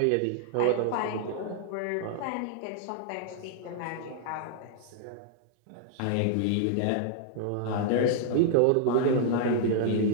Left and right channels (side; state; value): both; different; correlation -0.01